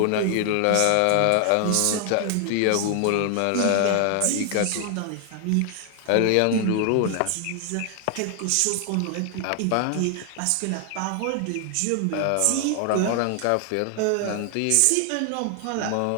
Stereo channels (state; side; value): different; both; correlation 0.00